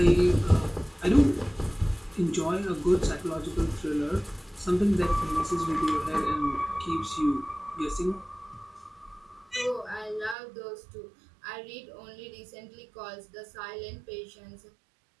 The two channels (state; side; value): drops out; left; at 10.4 s